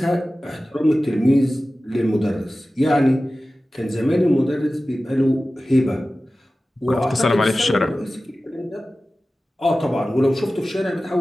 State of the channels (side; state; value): both; normal; correlation 0.96